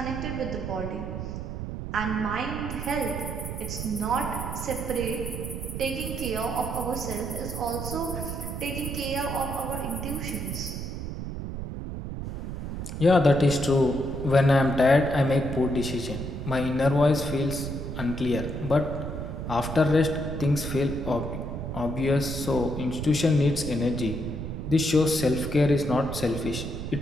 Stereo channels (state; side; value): noise; right; rumble, 6 dB below the sound